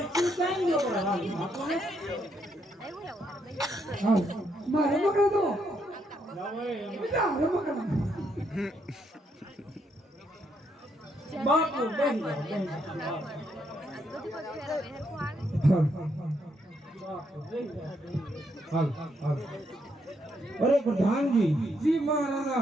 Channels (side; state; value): both; normal; correlation 0.76